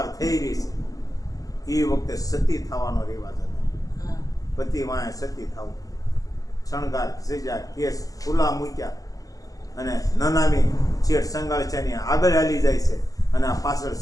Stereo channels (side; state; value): right; late; 0.17 ms